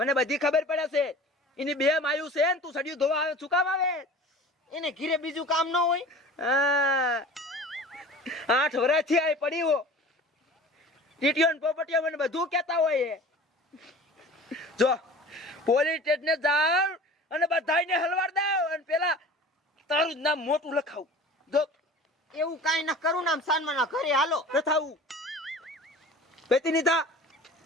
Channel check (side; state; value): both; normal; correlation 0.41